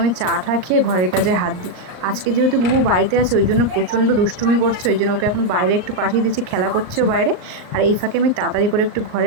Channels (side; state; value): left; late; 38 ms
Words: চাটা খেয়ে ঘরের কাজে হাত দিই। আজকে যেহেতু বুবু বাড়িতে আছে ওই জন্য প্রচণ্ড দুষ্টুমি করছে, ওই জন্য ওকে এখন বাইরে একটু পাঠিয়ে দিচ্ছি, খেলা করছেও বাইরে। আর এই ফাঁকে আমি তাড়াতাড়ি করে একটু